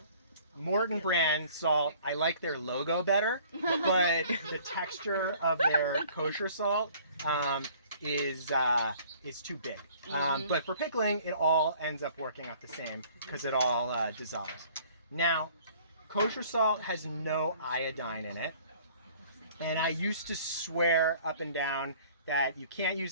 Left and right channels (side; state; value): both; inverted; correlation -0.54